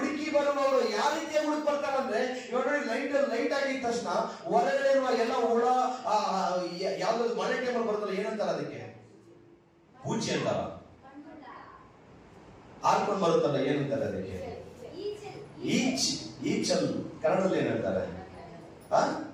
ಬರುವವರು ಯಾವ ರೀತಿಯಾಗಿ ಹುಡುಕಿ ಬರ್ತಾರಂದ್ರೆ, ಇವಾಗ ಲೈಟ್ ಆಗಿದ ತಕ್ಷಣ ಹೊರಗಡೆ ಇರುವ ಎಲ್ಲ ಹುಳ, ಯಾವ್ದಾದ್ರು ಮಳೆ ಟೈಮಲ್ಲಿ ಬರುತ್ತಲ್ಲ, ಏನಂತಾರ ಅದಕ್ಕೆ? ಬೂಚಿ ಅಂತಾರ. ಹಾರ್ಕೊಂಡು ಬರುತ್ತಲ್ಲ, ಏನಂತಾರೆ ಅದಕ್ಕೆ? ಈಚಲ್. ಕನ್ನಡದಲ್ಲಿ ಏನಂತಾರೆ?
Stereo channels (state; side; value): identical; both; correlation 1.00